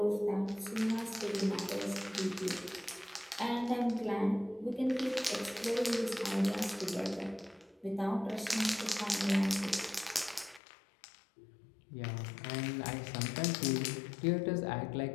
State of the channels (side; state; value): right; drops out; at 10.6 s